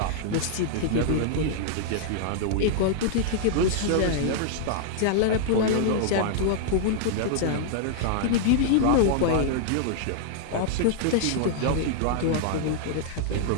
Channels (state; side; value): different; both; correlation -0.01